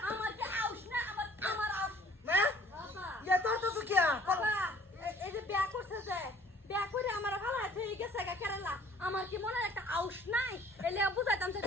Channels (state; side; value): normal; both; correlation 0.55